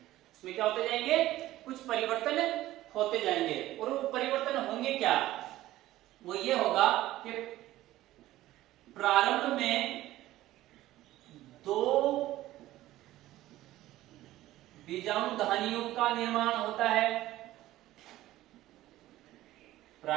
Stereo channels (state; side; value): quieter; left; 15.4 dB